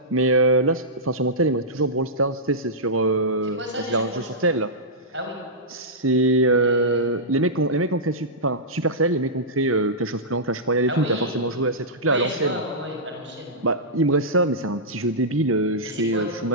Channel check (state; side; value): normal; both; correlation -0.13